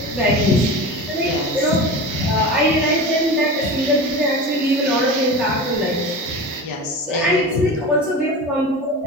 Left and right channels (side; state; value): both; normal; correlation 0.30